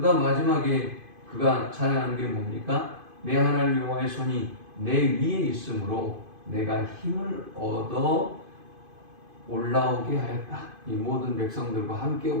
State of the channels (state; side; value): late; left; 2.5 ms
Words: 다음 마지막에 그가 찬양하는 게 뭡니까? 내 하나님 여호와의 손이 내 위에 있으므로 내가 힘을 얻어 올라오게 하였다. 이 모든 백성들과 함께